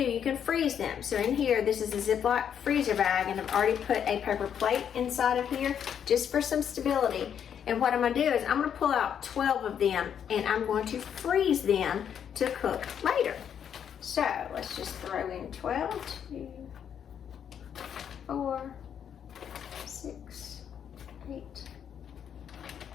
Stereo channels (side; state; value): right; quieter; 8.5 dB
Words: you can freeze them. So in here, this is a Ziploc freezer bag, and I've already put a paper plate inside of here just for some stability. And what I'm going to do is I'm going to pull out 12 of them, and I'm going to freeze them to cook later. So let's just throw in 12, 2, 4, 6, 8,